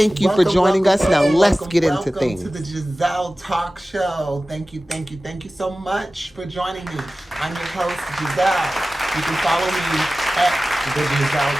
you for joining us. Now let's get into things. Welcome to the Gezelle Talk Show. Thank you so much for joining me. I'm your host, Gezelle. You can follow me at the Gezelle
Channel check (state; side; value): normal; both; correlation 0.96